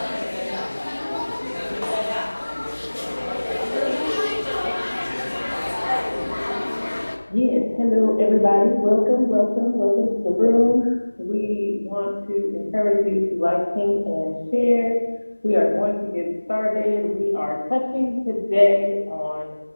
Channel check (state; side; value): inverted; both; correlation -1.00